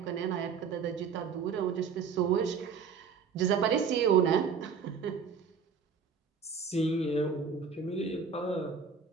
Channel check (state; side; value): quieter; left; 6.0 dB